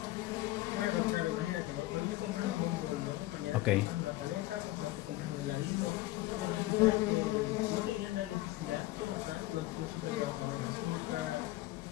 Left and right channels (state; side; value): quieter; right; 17.6 dB